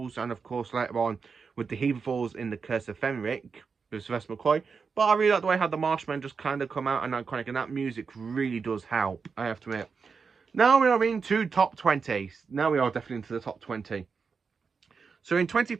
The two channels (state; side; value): quieter; left; 5.4 dB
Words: and of course later on with the Heaverfalls in the Curse of Fenric. with Sylvester McCoy. But I really like the way how the Mastermind just kind of come out and iconic, and that music really does help, I have to admit. Now we are into top 20. Now we are definitely into the top 20. So in 20th